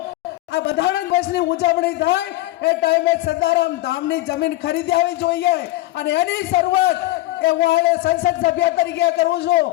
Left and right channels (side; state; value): right; quieter; 17.9 dB